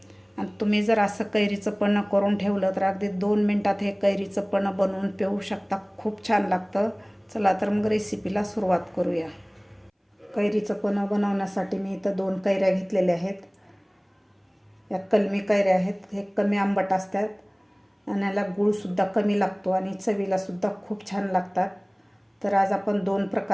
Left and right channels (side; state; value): both; identical; correlation 1.00